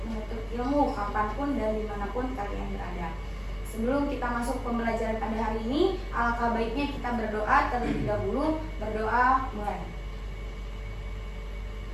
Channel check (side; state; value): both; identical; correlation 1.00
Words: menuntut ilmu kapanpun dan dimanapun kalian berada. Sebelum kita masuk pembelajaran pada hari ini, alangkah baiknya kita berdoa terlebih dahulu. Berdoa mulai.